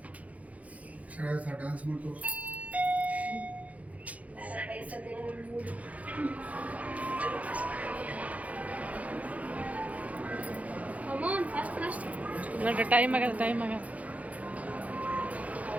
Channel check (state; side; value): late; left; 0.069 ms